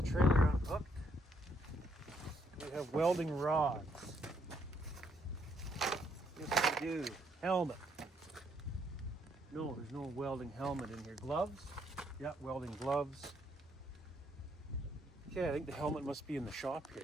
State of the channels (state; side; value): normal; both; correlation 0.72